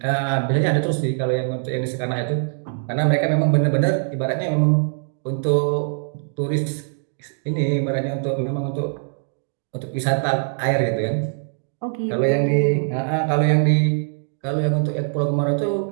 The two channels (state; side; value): silent; left; digital silence